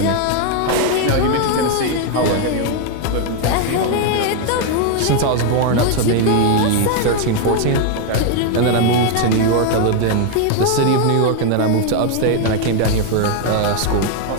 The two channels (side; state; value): both; different; correlation 0.00